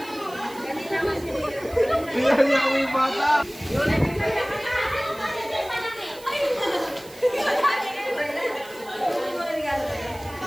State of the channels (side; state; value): right; noise; hiss, 20 dB below the sound